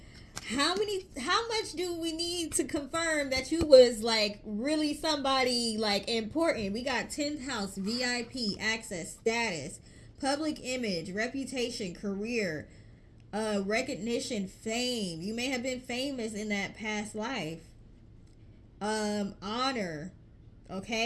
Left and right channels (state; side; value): identical; both; correlation 1.00